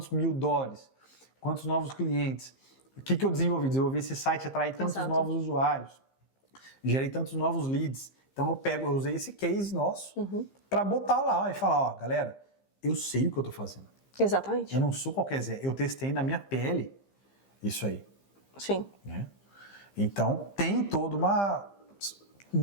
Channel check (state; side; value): late; right; 15 ms